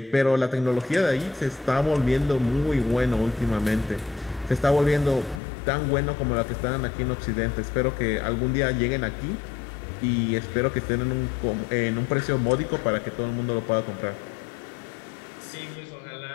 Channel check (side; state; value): right; drops out; at 5.4 s